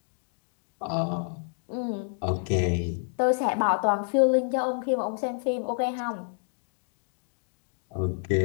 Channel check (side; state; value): right; silent; 59 dB below the other